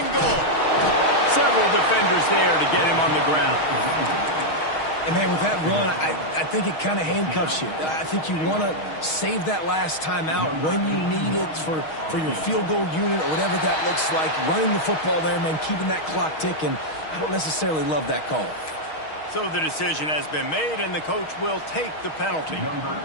goal. Several defenders there to get him on the ground. And, man, with that run, I think it kind of handcuffs you. I think you want to save that last time out when you need it for your field goal unit or whatever that looks like. Running the football there, man, keeping that clock ticking. I don't necessarily love that call. So the decision has been made, and the coach will take the penalty.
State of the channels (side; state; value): right; late; 6.4 ms